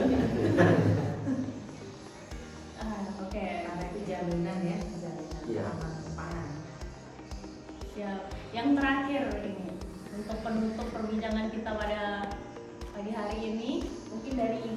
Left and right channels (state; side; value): identical; both; correlation 1.00